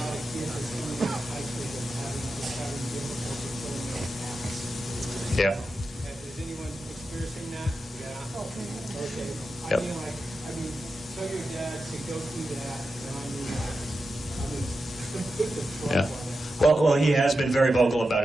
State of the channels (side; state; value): both; normal; correlation 0.90